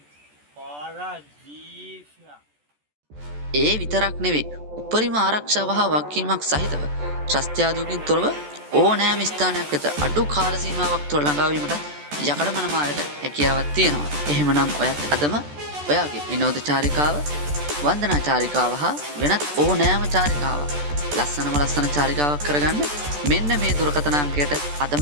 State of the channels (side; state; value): left; late; 14 ms